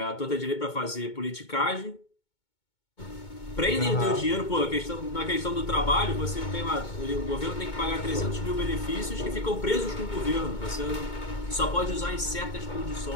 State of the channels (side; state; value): right; late; 2.2 ms